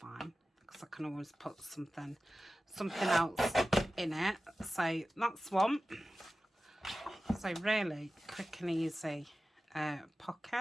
because I can always put something else in it. So that's one. So really quick and easy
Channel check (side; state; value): both; normal; correlation 0.95